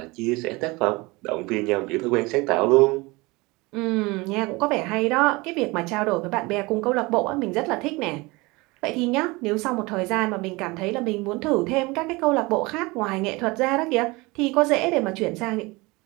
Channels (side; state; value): left; quieter; 23.9 dB